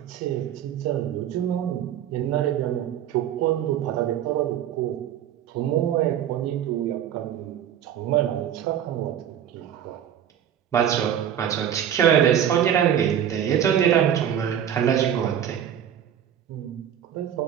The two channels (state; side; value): quieter; left; 9.9 dB